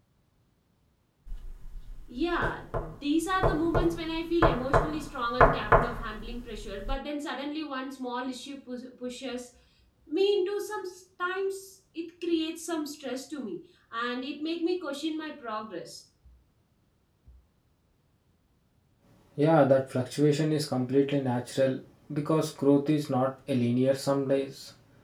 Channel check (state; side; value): identical; both; correlation 1.00